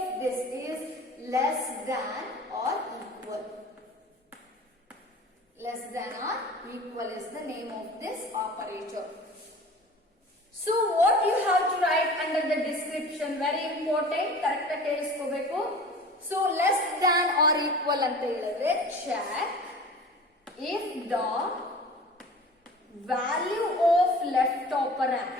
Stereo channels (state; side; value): normal; both; correlation 0.40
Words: this is less than or equal. Less than or equal is the name of this operator. So what you have to write under the description, very important, correct ಆಗಿ ಕೇಳಿಸ್ಕೋಬೇಕು. So less than or equal ಅಂತ ಹೇಳಿದ್ರೆ check if the value of left